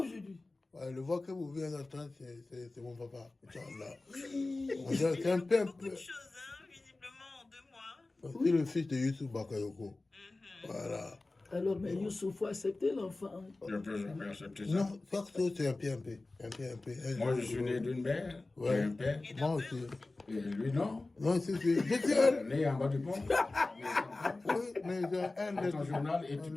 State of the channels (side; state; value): right; quieter; 3.2 dB